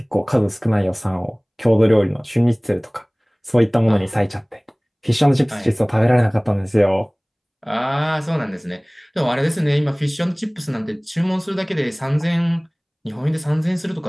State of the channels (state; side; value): identical; both; correlation 1.00